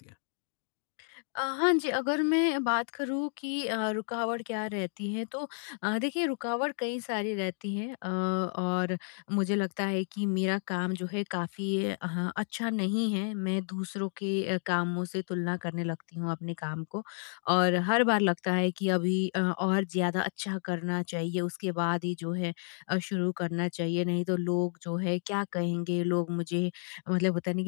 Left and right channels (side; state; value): right; silent; digital silence